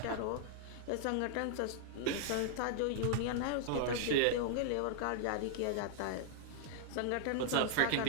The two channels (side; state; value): both; different; correlation -0.01